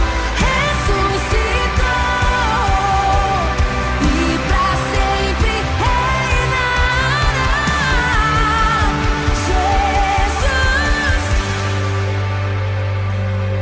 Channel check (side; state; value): both; identical; correlation 1.00